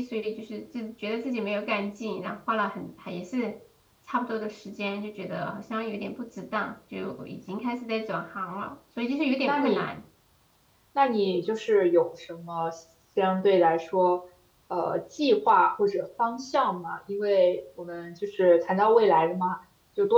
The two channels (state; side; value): identical; both; correlation 1.00